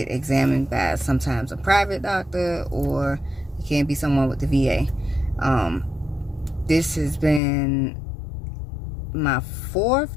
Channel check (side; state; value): right; drops out; at 7.4 s